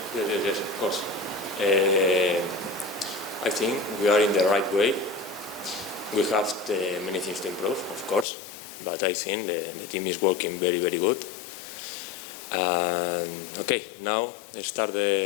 of course. I think we are in the right way. We have many things to improve, of course, but I think the team is working very, very good. Okay, now let's start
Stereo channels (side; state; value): right; drops out; at 8.2 s